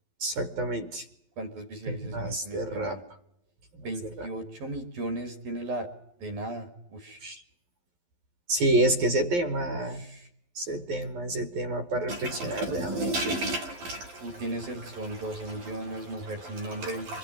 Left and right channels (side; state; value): left; late; 12 ms